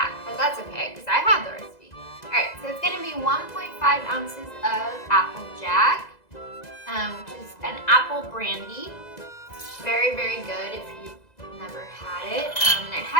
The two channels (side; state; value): right; late; 2.0 ms